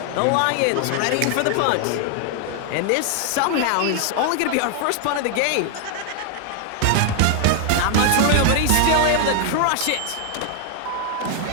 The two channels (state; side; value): different; both; correlation 0.00